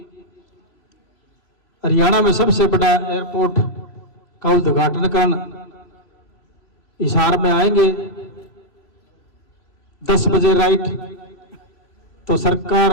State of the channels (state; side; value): late; right; 3.0 ms